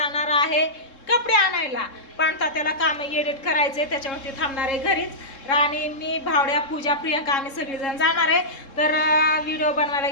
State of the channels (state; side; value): late; right; 3.7 ms